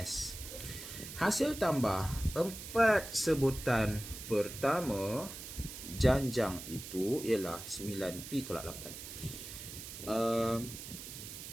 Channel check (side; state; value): right; noise; hiss, 11 dB below the sound